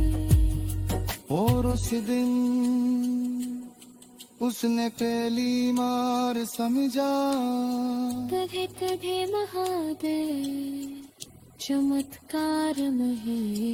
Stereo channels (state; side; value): identical; both; correlation 1.00